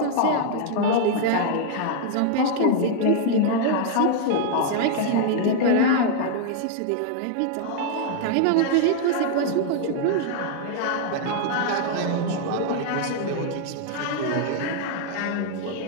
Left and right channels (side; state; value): both; different; correlation 0.00